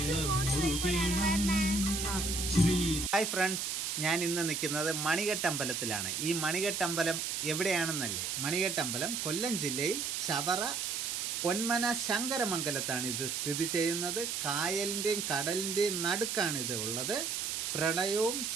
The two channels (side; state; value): right; noise; hiss, 2 dB below the sound